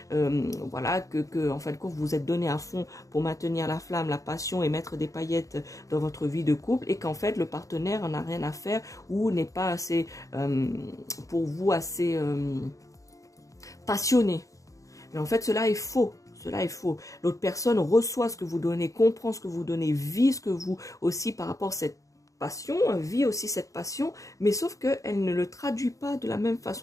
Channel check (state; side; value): late; right; 0.16 ms